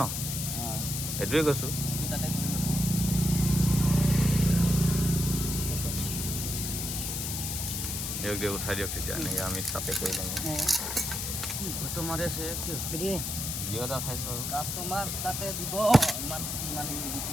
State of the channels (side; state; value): left; noise; hiss, 3 dB below the sound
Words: সেইটোৱে কৈছোঁ দিয়ক দিয়ক উঠাই দিয়ক তেতিয়া এনেকৈ আমি তাতে কৰি ল'ম তোমাৰে আছে কি ভিডিঅ' এটা উঠাইছোঁ আৰু কাষ্টমাৰ তাতে দিব ইমান ইমান